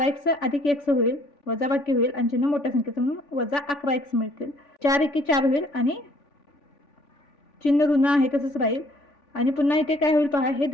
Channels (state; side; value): late; right; 3.5 ms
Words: अधिक x होईल वजा बाकी होईल आणि चिन्ह मोठ्या संख्येचं म्हणून वजा 11x मिळतील. 4 एके 4 होईल आणि चिन्ह ऋण आहे तसंच राहील आणि पुन्हा इथे काय होईल पहा हे